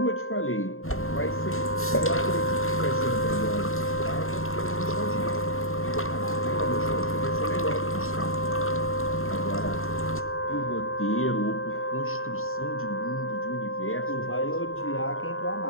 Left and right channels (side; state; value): right; late; 0.61 ms